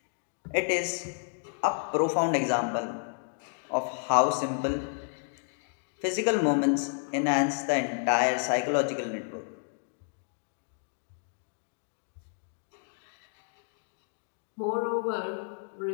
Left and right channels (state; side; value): silent; right; digital silence